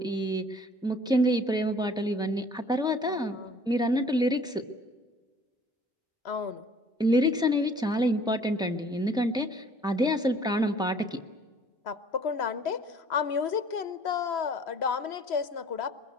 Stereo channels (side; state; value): both; normal; correlation 0.54